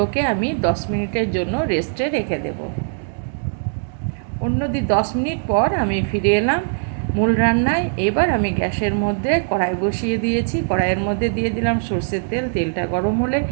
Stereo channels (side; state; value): left; silent; digital silence